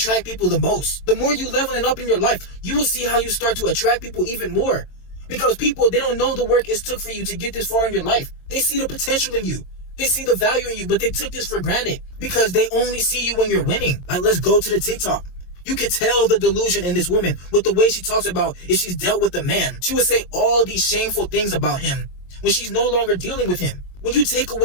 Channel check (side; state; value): right; late; 22 ms